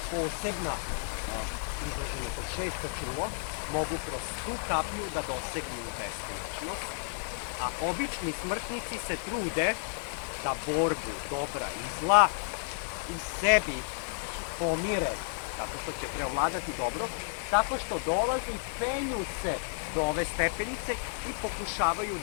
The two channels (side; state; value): right; silent; 57 dB below the other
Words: posebna izraženo kod šesto čulo, mogu kroz tu kapiju da dosegnu beskonačnost, a obični smrtnici se trude da borbu dobra i zla u sebi pomire, tako što će preovladati dobro, tako što dolaze i penju se do ove stepenice i pokušavaju